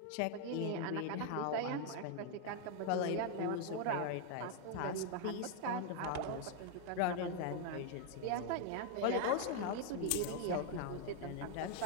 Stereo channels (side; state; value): both; different; correlation 0.00